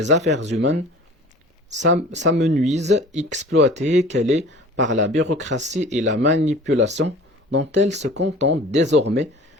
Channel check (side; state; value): both; normal; correlation 0.44